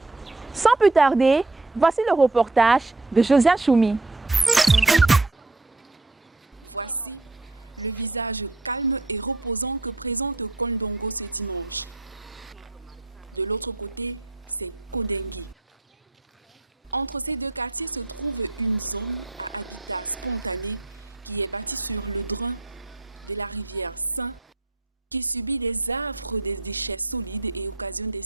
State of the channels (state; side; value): quieter; left; 3.1 dB